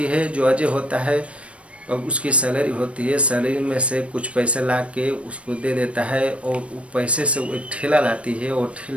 है। जो अजय होता है अब उसकी सैलरी होती है, सैलरी में से कुछ पैसे ला के उसको दे देता है और वो पैसे से वो एक ठेला लाती है और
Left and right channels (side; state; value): left; late; 0.061 ms